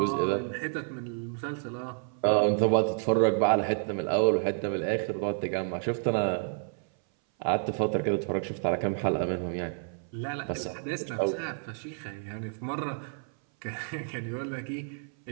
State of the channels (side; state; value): left; silent; 58 dB below the other